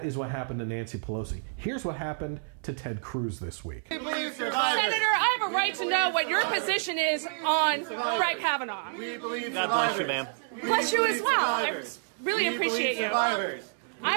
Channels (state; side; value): silent; left; digital silence